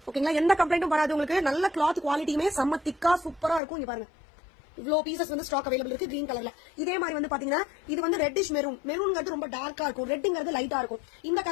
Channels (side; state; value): right; drops out; at 3.6 s